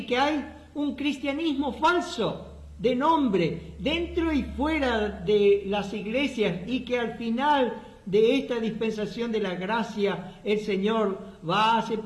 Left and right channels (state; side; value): identical; both; correlation 1.00